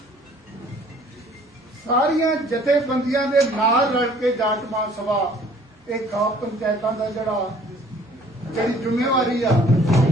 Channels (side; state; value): both; normal; correlation 0.56